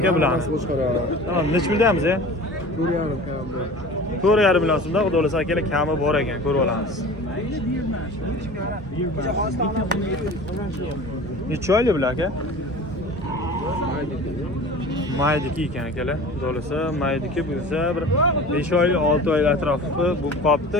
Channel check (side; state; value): both; normal; correlation 0.39